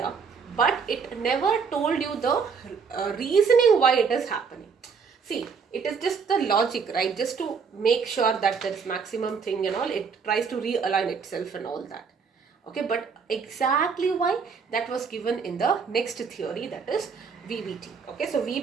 but it never told you the reasoning why it is happening. See, it is just the logic, right? Just to make sure that there is maximum thing and all, it tries to realign itself and all that. Okay, but exactly why, that was given in the next theory, that is VBT. Okay, so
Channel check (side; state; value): left; quieter; 5.7 dB